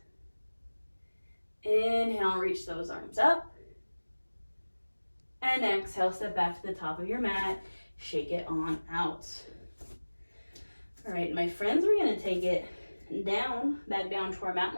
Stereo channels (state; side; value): inverted; both; correlation -1.00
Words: Inhale, reach those arms up. And exhale, step back to the top of your mat. Shake it on out. All right, my friends, we're gonna take it down, back down to our mat.